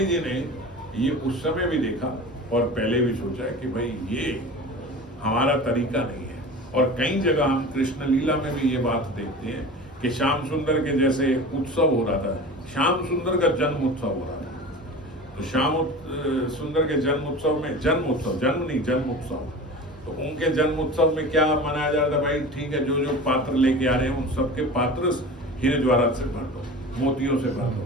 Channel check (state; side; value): normal; both; correlation 0.35